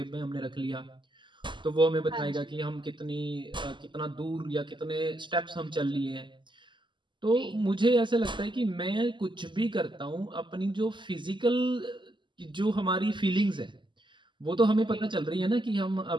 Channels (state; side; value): late; left; 0.23 ms